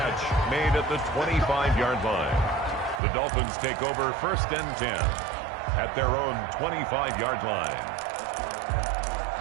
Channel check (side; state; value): left; drops out; at 3.0 s